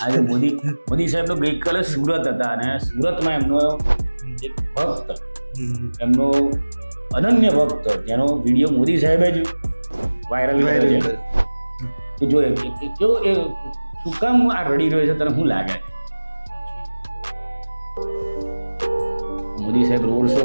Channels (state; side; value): inverted; both; correlation -1.00